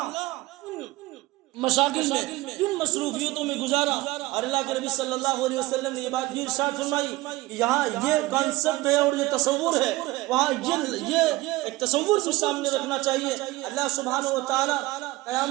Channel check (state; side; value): quieter; left; 19.5 dB